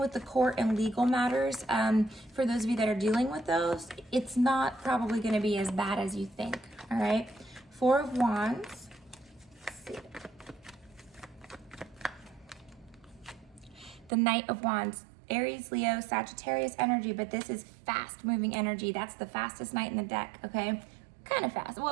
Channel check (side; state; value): left; drops out; at 14.1 s